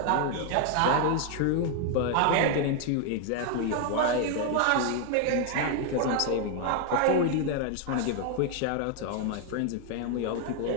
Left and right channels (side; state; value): both; different; correlation 0.00